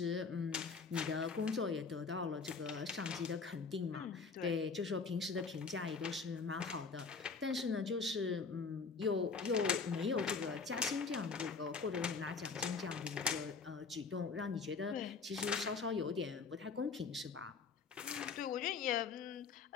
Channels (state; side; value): quieter; right; 5.0 dB